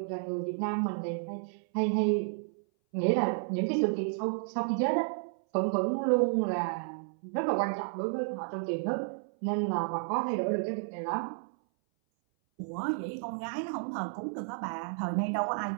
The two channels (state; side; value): silent; left; 57 dB below the other